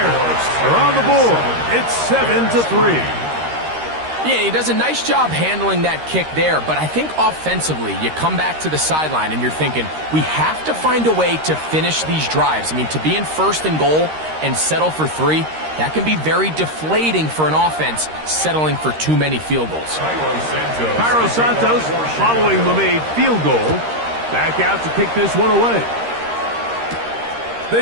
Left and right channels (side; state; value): left; late; 13 ms